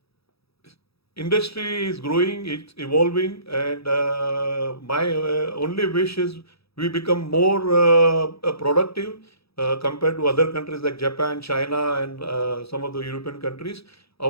Industry is growing, it's evolving, and my only wish is we become more productive compared to other countries like Japan, China, and some of the European countries.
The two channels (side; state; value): right; late; 0.77 ms